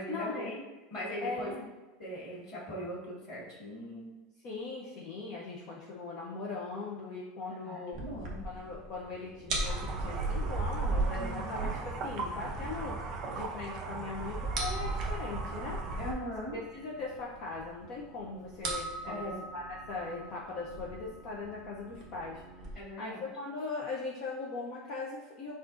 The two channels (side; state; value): both; normal; correlation 0.32